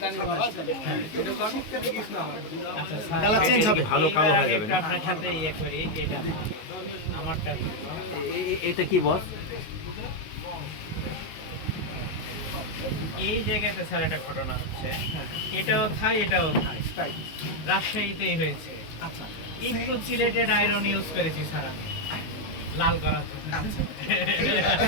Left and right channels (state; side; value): late; right; 19 ms